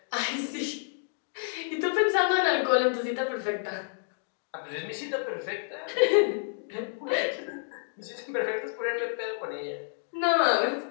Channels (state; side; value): silent; right; digital silence